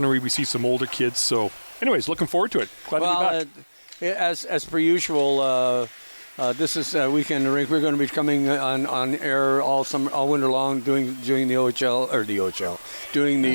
we see some older kids. So anyways, looking forward to it. Glad to be back. As per usual, this is Weekend in the Rink. We're going to be coming on air all winter long, doing the OHL or the OHL, doing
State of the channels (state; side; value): inverted; both; correlation -1.00